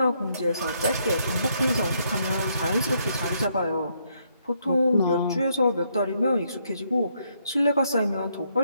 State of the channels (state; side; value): inverted; both; correlation -0.74